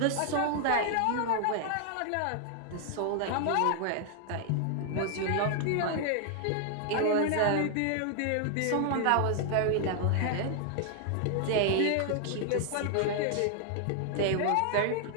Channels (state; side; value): different; both; correlation 0.00